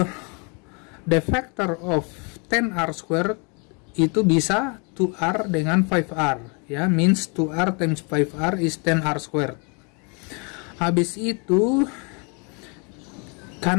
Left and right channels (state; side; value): quieter; right; 34.2 dB